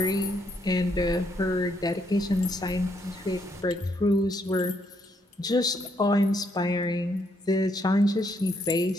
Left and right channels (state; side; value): normal; both; correlation 0.74